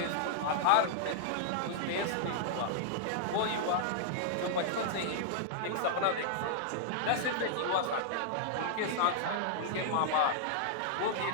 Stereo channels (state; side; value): different; both; correlation -0.01